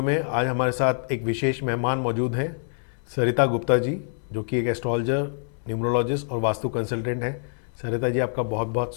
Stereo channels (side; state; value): right; silent; 61 dB below the other